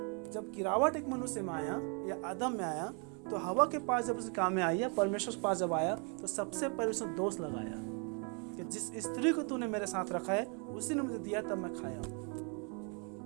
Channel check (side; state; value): left; quieter; 37.1 dB